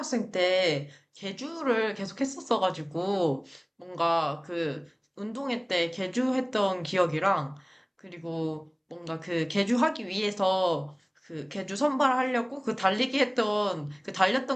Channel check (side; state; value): both; identical; correlation 1.00